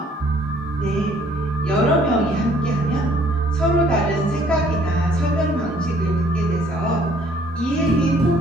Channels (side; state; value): both; normal; correlation 0.60